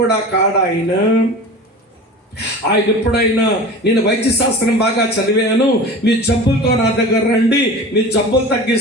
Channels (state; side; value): normal; both; correlation 0.35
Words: కూడా కాడా ఆయన. ఆయన ఎప్పుడైనా నేను వైద్య శాస్త్రం బాగా చదివాను, మీ జబ్బులతో నా దగ్గర రండి, మీ జబ్బులు